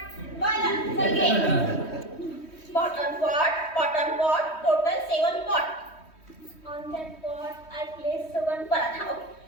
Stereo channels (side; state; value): right; late; 3.1 ms